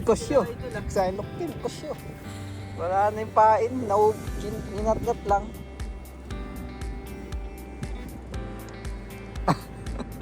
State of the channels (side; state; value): both; identical; correlation 1.00